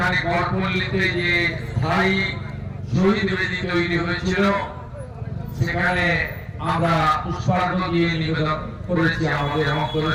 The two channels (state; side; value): identical; both; correlation 1.00